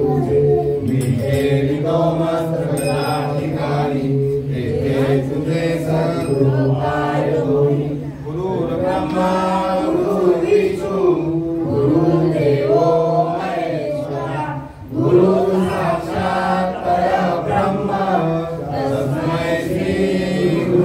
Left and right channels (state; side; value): identical; both; correlation 1.00